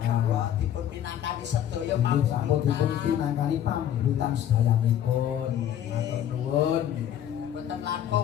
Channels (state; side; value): quieter; right; 10.6 dB